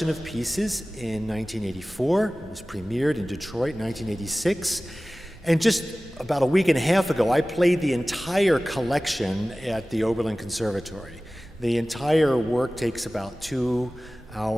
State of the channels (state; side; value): normal; both; correlation 0.97